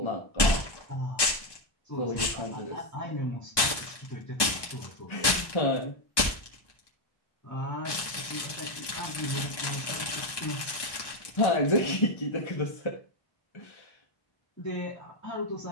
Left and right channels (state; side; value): late; right; 1.2 ms